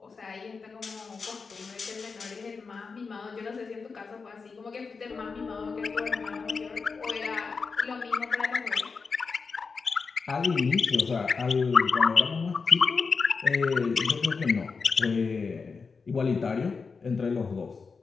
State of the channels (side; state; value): right; quieter; 4.9 dB